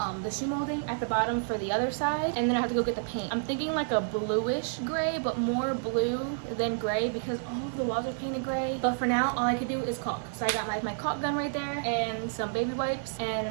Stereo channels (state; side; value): silent; left; 58 dB below the other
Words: shoe molding at the bottom for the other side, and then I have to go get the paint. I'm thinking like a bluish gray, but more blue than gray because all of the walls are painted gray. But for now, all I could do is caulk. So I got my caulk gun right there and some baby wipes, and